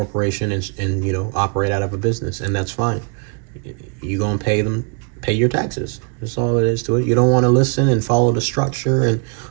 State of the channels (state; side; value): quieter; left; 39.1 dB